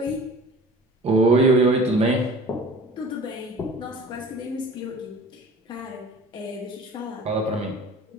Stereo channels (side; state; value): both; normal; correlation 0.43